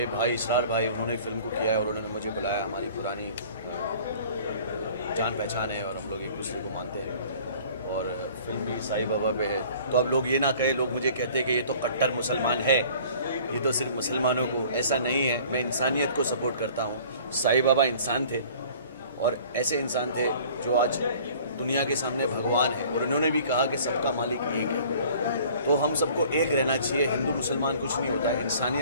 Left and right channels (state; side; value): inverted; both; correlation -0.50